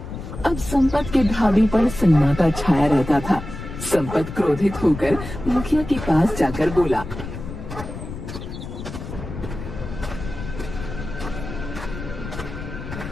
अब संपत के ढाबे पर सन्नाटा छाया रहता था। संपत क्रोधित होकर मुखिया के पास जाकर बोला,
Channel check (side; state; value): left; noise; rumble, 9 dB below the sound